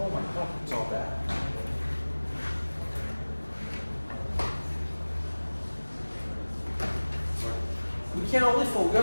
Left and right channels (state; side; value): inverted; both; correlation -1.00